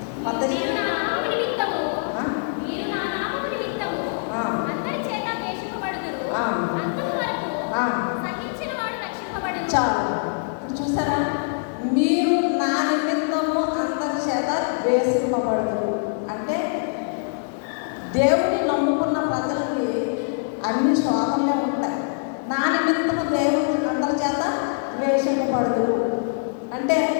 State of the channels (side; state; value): right; silent; digital silence